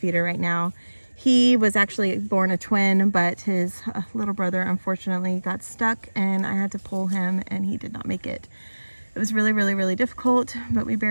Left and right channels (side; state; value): both; inverted; correlation -1.00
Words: right now. He was actually born a twin, but his little brother unfortunately got stuck, and I had to pull him, and he did not make it. It was really, really, really difficult, but we